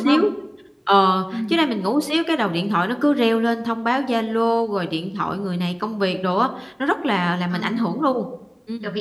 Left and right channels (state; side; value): identical; both; correlation 1.00